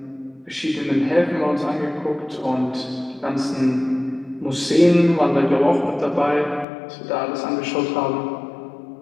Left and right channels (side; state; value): right; drops out; at 6.7 s